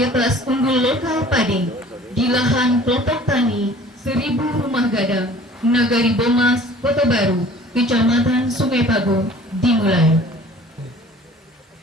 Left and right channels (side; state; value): both; normal; correlation 0.49